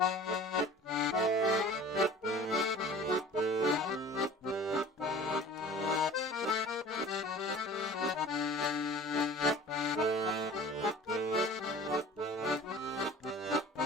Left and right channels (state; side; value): normal; both; correlation 0.43